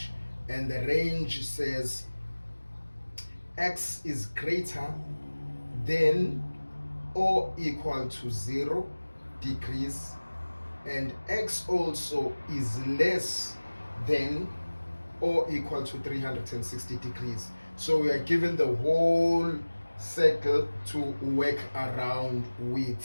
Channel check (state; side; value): inverted; both; correlation -1.00